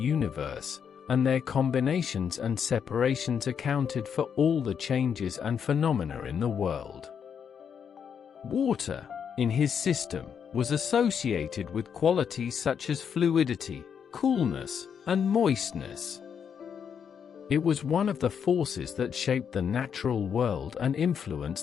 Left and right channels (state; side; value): quieter; right; 7.4 dB